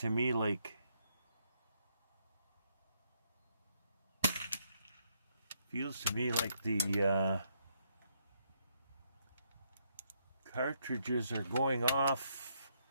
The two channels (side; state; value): both; inverted; correlation -0.75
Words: me like the cartridges are going off